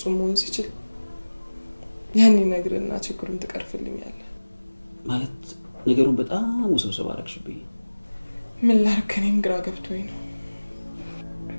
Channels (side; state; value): both; inverted; correlation -1.00